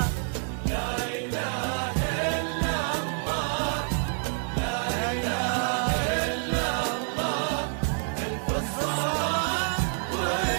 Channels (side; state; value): left; silent; 60 dB below the other